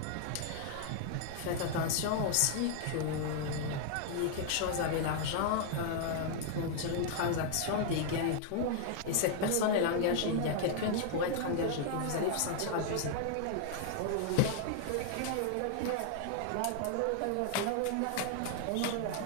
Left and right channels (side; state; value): both; different; correlation 0.00